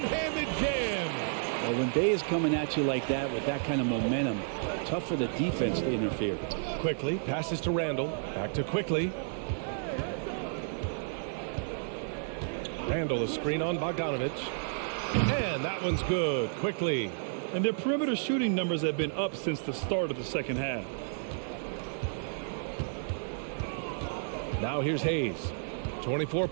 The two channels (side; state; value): left; silent; digital silence